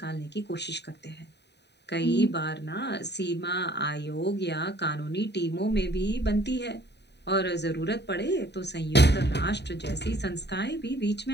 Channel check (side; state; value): right; late; 0.50 ms